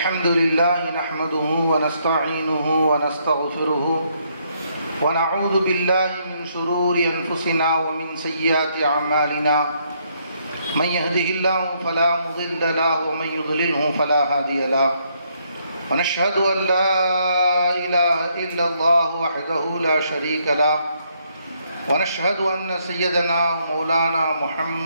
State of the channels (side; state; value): both; inverted; correlation -0.72